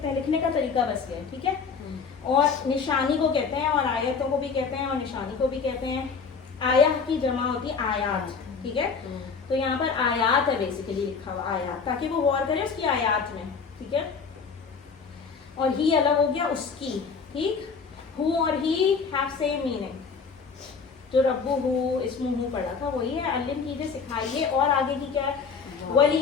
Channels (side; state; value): right; quieter; 5.4 dB